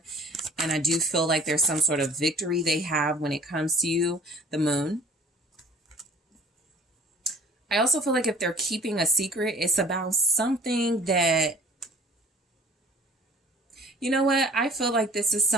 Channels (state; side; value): normal; both; correlation 0.50